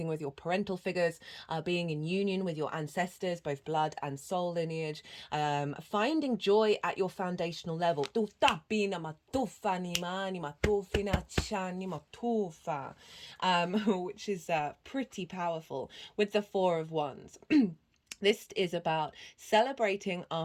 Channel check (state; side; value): identical; both; correlation 1.00